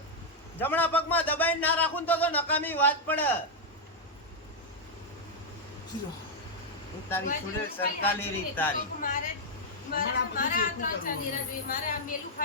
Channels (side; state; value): both; normal; correlation -0.02